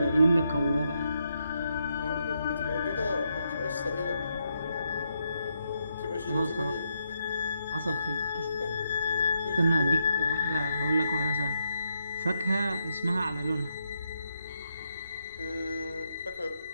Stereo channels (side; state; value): both; inverted; correlation -0.80